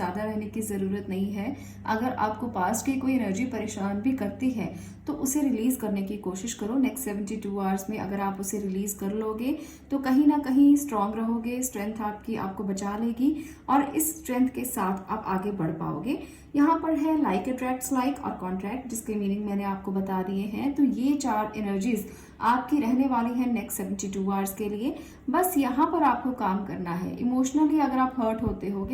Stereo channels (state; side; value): identical; both; correlation 1.00